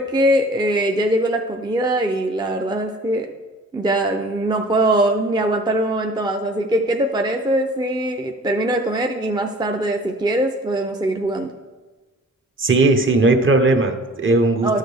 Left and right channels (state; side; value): normal; both; correlation 0.47